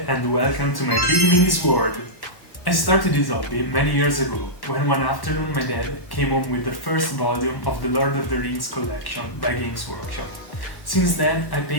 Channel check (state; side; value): late; right; 1.1 ms